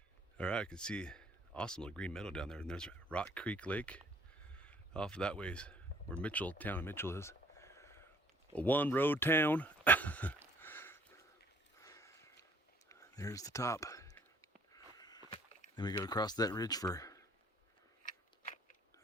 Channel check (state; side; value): normal; both; correlation 0.59